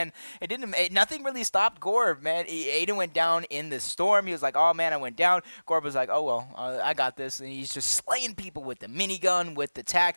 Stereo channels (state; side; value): inverted; both; correlation -1.00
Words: Nothing really stopped Gorb, man. Aiden went down in the storm. He was like, oh, man, I went down. Gorb was like, oh, well, I got this. And he's just slaying people with the minigun, with the tack.